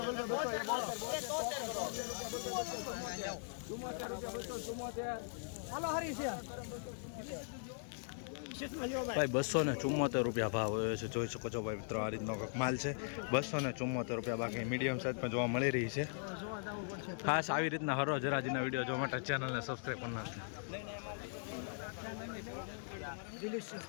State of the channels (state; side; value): silent; right; digital silence